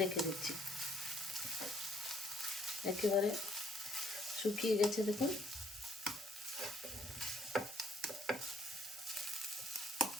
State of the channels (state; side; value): normal; both; correlation 0.65